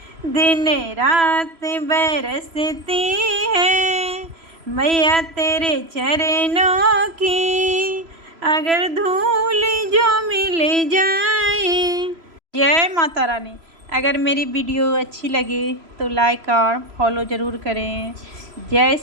दिन रात बरसती है। मैया तेरे चरणों की अगर धूल जो मिल जाए। जय माता रानी। अगर मेरी वीडियो अच्छी लगे तो लाइक और फॉलो ज़रूर करें। जय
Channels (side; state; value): left; late; 3.0 ms